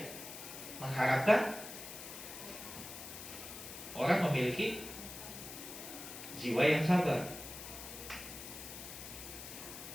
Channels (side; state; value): left; noise; hiss, 10 dB below the sound